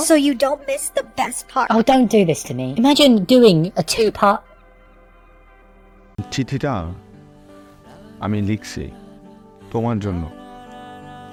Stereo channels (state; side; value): identical; both; correlation 1.00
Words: so you don't miss the best part. Oh, don't do this to me. Imagine doing a two-part... চিঠিটা আমি লিখছি তোমার জন্য।